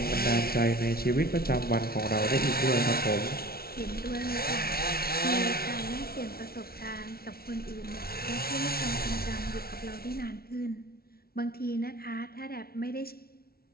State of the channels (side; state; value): right; late; 0.44 ms